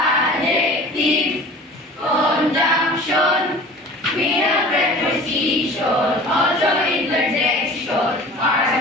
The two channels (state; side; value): normal; both; correlation 0.42